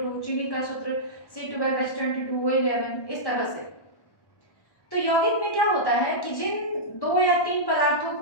चीनी का सूत्र C12H22, O11, इस तरह से। तो यौगिक में क्या होता है कि जिन 2 या 3 पदार्थों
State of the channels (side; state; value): right; late; 1.1 ms